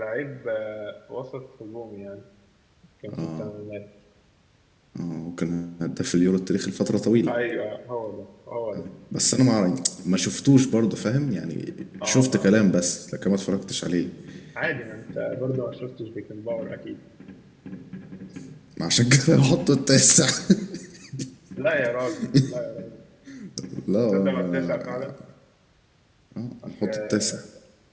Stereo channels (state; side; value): identical; both; correlation 1.00